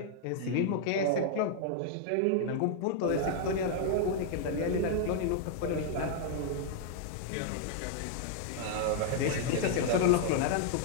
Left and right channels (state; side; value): different; both; correlation 0.00